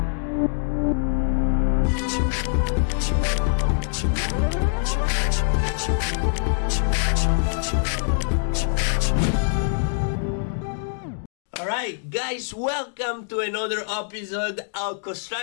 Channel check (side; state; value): right; silent; digital silence